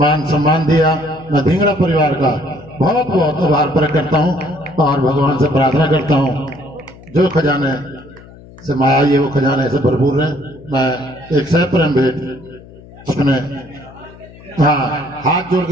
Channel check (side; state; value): left; noise; hum, 21 dB below the sound